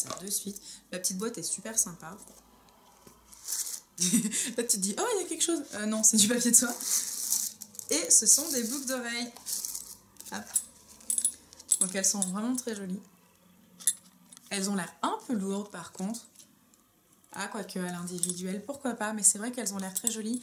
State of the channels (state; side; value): identical; both; correlation 1.00